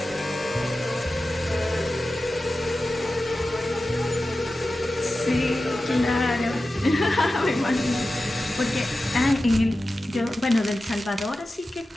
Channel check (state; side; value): normal; both; correlation 0.94